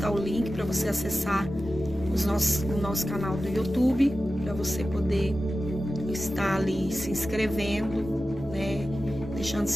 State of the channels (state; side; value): normal; both; correlation 0.94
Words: o link para você acessar o nosso canal do YouTube, para você poder estar ali se inscrevendo, né? Deixando